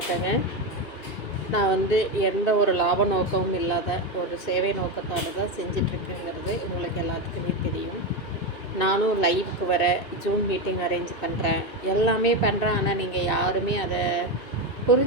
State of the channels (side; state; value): right; late; 2.6 ms